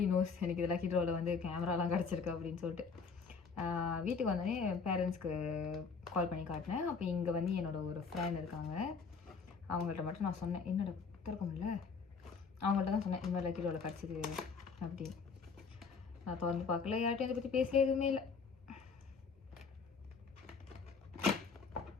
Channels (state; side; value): quieter; right; 5.2 dB